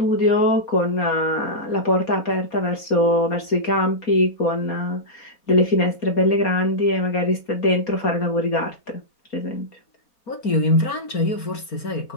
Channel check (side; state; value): right; late; 4.2 ms